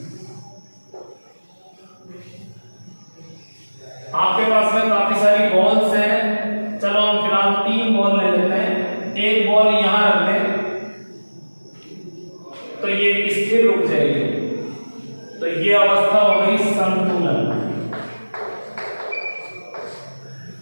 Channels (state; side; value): inverted; both; correlation -1.00